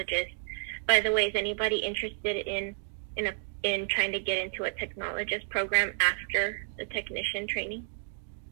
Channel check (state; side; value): silent; left; digital silence